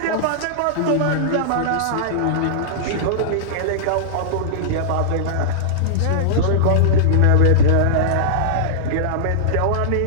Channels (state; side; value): different; both; correlation -0.02